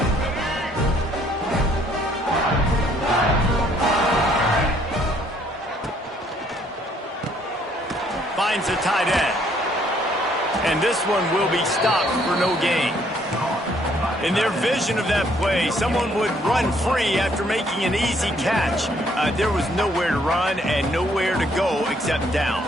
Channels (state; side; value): normal; both; correlation 0.65